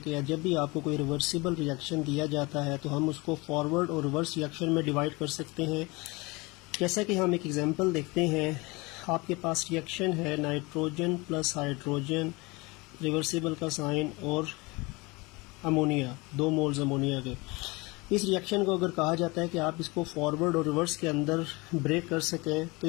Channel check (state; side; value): quieter; right; 25.0 dB